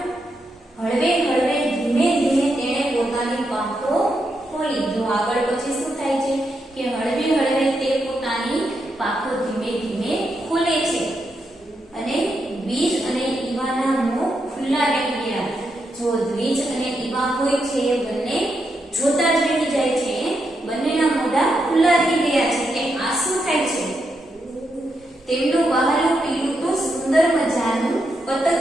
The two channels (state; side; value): normal; both; correlation 0.83